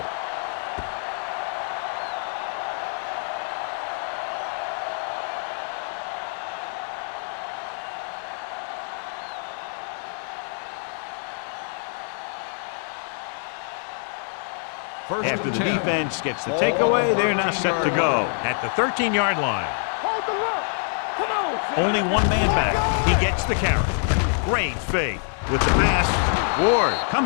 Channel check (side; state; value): right; silent; 58 dB below the other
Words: After the defense gets the takeaway, they're now set to go at the 13-yard line. Hold the look. Come on. Only one man back. He gets the carry. Great fake with the pass. Ward